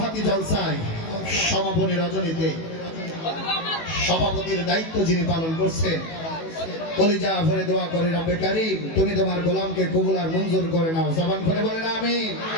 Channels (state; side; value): late; right; 18 ms